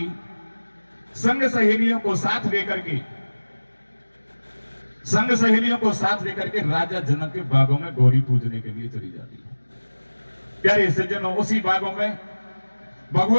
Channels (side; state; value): both; inverted; correlation -1.00